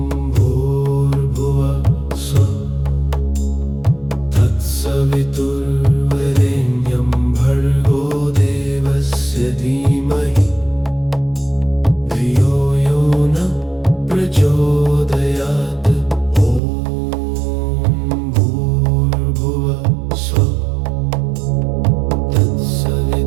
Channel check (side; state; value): left; drops out; at 16.6 s